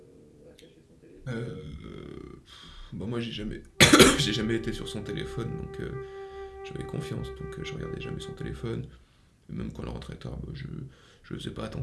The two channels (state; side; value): identical; both; correlation 1.00